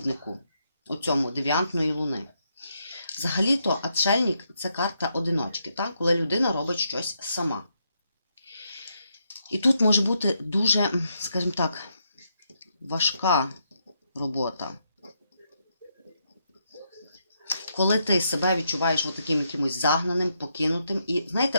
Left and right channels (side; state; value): both; inverted; correlation -0.79